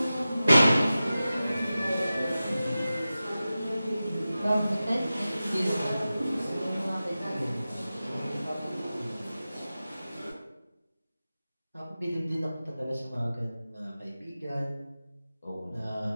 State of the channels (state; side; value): inverted; both; correlation -0.95